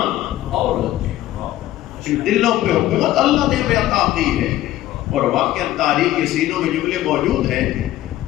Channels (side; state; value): right; quieter; 14.4 dB